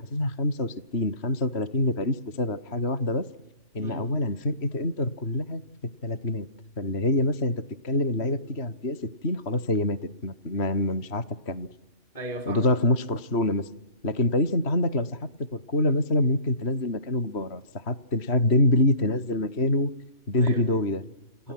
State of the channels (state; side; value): late; right; 3.1 ms